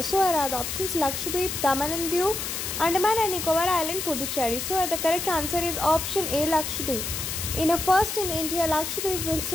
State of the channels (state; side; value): noise; left; hiss, 4 dB below the sound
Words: So are the options Lakshadweep, Daman and Diu, Andaman and Nicobar island, Puducherry. So the correct answer is option A, Lakshadweep. In a first in India, Lakshadweep will